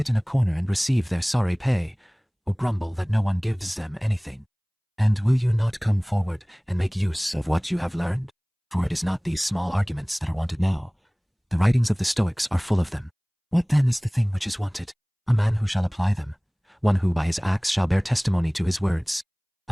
in a corner and receive their sorry pay, or grumble that no one gives them anything? And will you not come forward and make use of what you have learned? For it is not these small arguments that are wanted now, The writings of the Stoics are full of them. What then is the thing which is wanted? A man who shall apply them, one who by his acts shall bear testimony to his words.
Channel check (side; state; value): both; identical; correlation 1.00